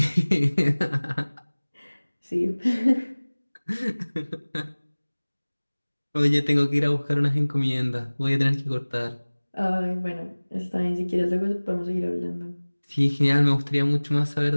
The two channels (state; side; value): inverted; both; correlation -1.00